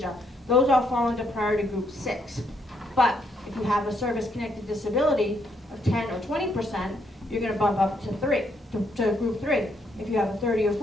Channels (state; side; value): normal; both; correlation 0.74